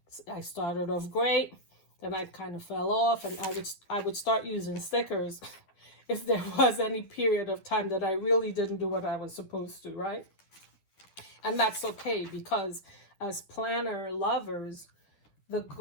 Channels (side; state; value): right; late; 10 ms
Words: I started off great, then I kind of fell off, and I would start using stickers if there was any period of time that I really didn't do what I was supposed to, right? And that's okay, because as planner lovers, the